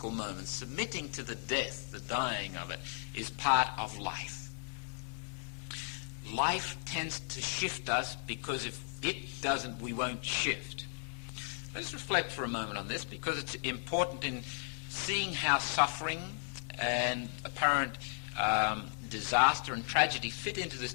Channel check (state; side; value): silent; right; 54 dB below the other